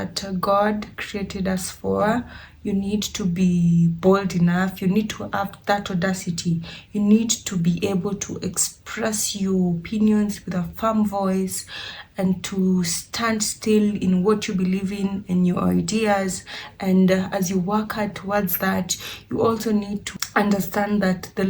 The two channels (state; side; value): identical; both; correlation 1.00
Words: God created us for. You need to be bold enough. You need to have that audacity. You need to be able to express your opinions with a firm voice and to stand still in what you believe in your ideas. And as you work hard towards that, you also need to understand that the